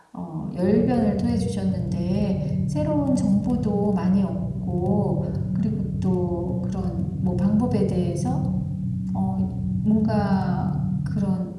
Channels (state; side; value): identical; both; correlation 1.00